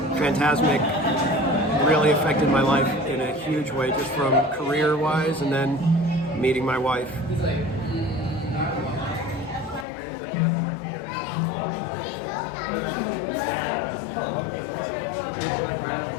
Fantasmic really affected my life in a huge way, just from career-wise, and then meeting my wife.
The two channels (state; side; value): drops out; right; at 9.9 s